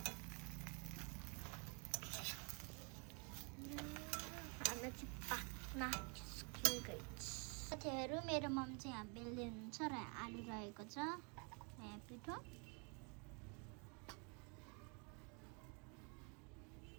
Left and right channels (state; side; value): quieter; left; 34.8 dB